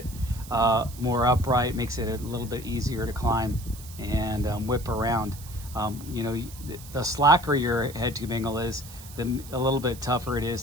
more upright, makes it a little bit easier to climb and whip around. You know, the slacker your head tube angle is, a little bit tougher it is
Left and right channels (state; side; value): noise; right; hiss, 17 dB below the sound